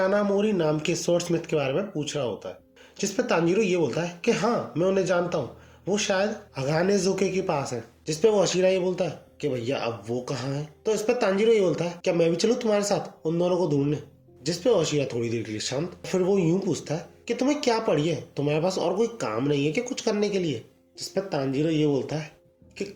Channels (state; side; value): identical; both; correlation 1.00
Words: नाम के स्वॉर्डस्मिथ के बारे में पूछ रहा होता है, जिसपे तांजीरो ये बोलता है कि हाँ मैं उन्हें जानता हूँ, वो शायद हगाने ज़ोके के पास है। जिसपे वो हाशिरा ये बोलता है कि भैया अब वो कहाँ है। तो इस पे तांजीरो ये बोलता है क्या मैं भी चलूँ तुम्हारे साथ उन दोनों को ढूंढने। जिसपे हाशिरा थोड़ी देर के लिए शांत, फिर वो यूं पूछता है कि तुम्हें क्या पड़ी है, तुम्हारे पास और कोई काम नहीं है कि कुछ करने के लिए। जिसपे तांजीरो ये बोलता है कि